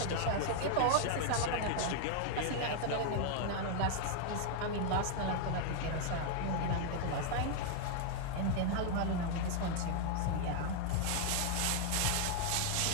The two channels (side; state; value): both; different; correlation 0.00